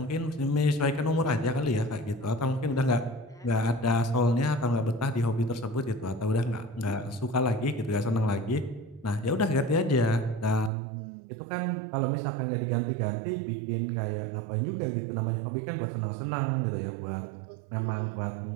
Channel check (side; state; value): left; drops out; at 10.7 s